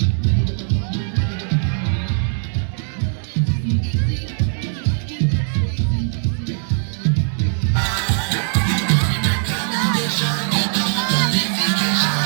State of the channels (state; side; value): silent; left; 66 dB below the other